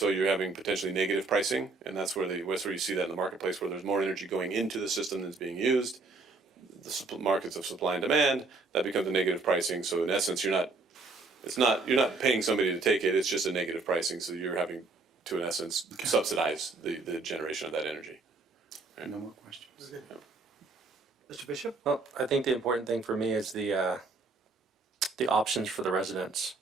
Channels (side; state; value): left; quieter; 3.7 dB